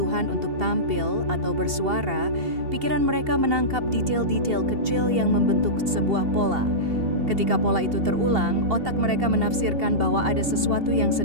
untuk tampil atau bersuara, pikiran mereka menangkap detail-detail kecil yang membentuk sebuah pola. Ketika pola itu terulang, otak mereka menafsirkan bahwa ada sesuatu yang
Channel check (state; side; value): late; left; 2.7 ms